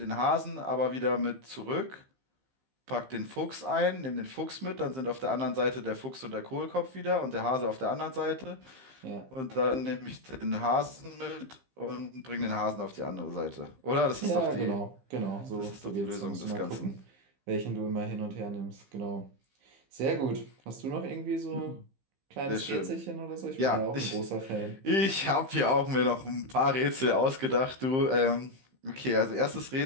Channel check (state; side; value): late; left; 15 ms